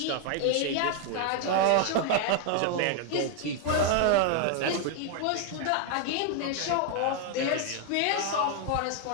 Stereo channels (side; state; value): both; different; correlation 0.00